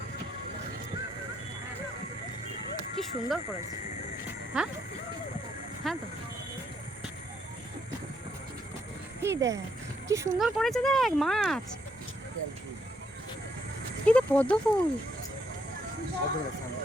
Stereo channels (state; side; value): normal; both; correlation 0.73